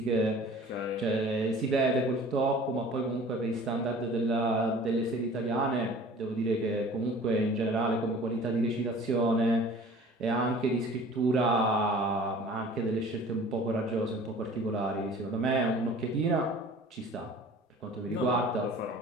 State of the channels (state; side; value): normal; both; correlation 0.46